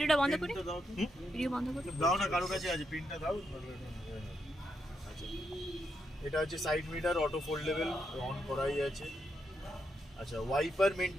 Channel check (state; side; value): normal; both; correlation 0.81